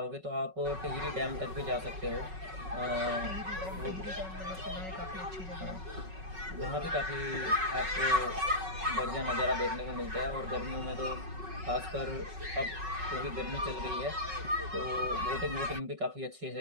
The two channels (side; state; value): left; late; 5.3 ms